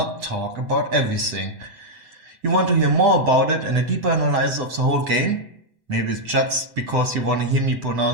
talk about everything. You want to hear more about it and a deeper analysis of the whole game? Maybe it's just because you want to hear me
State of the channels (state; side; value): late; left; 7.8 ms